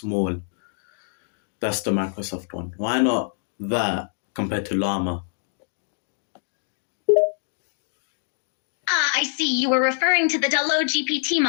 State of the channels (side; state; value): right; silent; digital silence